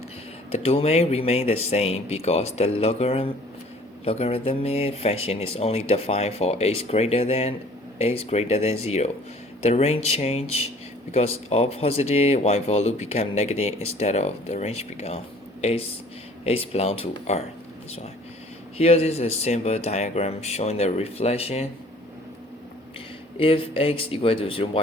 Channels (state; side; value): normal; both; correlation 0.53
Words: The domain remains the same because the logarithmic function is only defined for x greater than 0. The range change because of positive y value become negative instead of the range become x belong to R. That's why. Here is a simple diagram showing the reflection. If x equal to